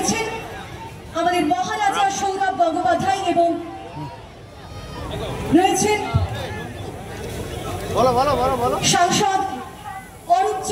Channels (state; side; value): identical; both; correlation 1.00